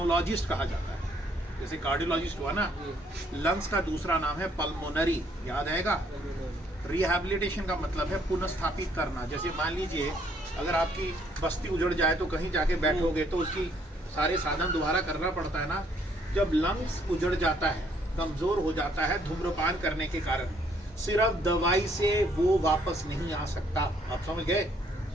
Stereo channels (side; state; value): both; normal; correlation 0.66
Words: कहा जाता है, जैसे कार्डियोलॉजिस्ट हुआ ना, लंग्स का दूसरा नाम है पल्मोनरी, याद आएगा। रिहैबिलिटेशन का मतलब है पुनर्स्थापित करना। जैसे मान लीजिए अगर आपकी बस्ती उजड़ जाए तो कहीं जाके बैठोगे तो उसकी सारे साधन दोबारा करना पड़ता है ना। जब लंग्स उजड़ जाता है, कमजोर हो जाता है धूम्रपान करने के कारण, सिर्फ दवाई से वो वापस नहीं आ सकता। आप समझ गए।